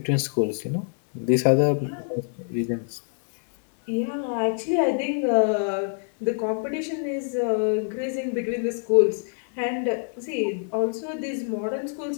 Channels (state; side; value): silent; right; 61 dB below the other